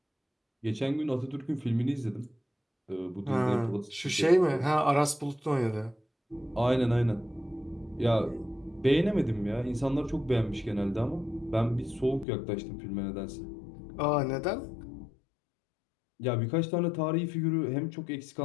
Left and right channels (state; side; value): drops out; right; at 12.2 s